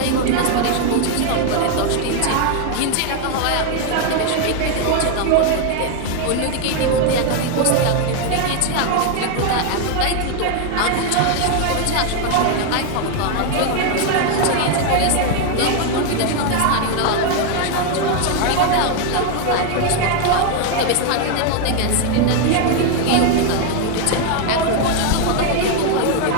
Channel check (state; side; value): different; both; correlation 0.01